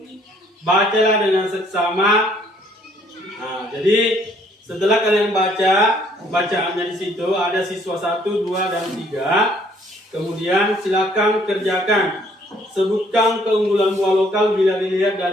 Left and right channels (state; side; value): normal; both; correlation 0.63